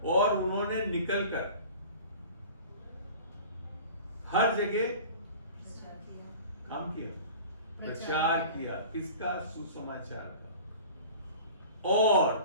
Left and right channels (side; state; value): both; inverted; correlation -0.41